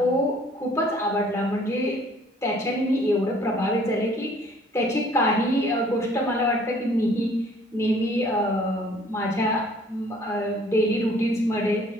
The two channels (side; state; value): both; normal; correlation 0.57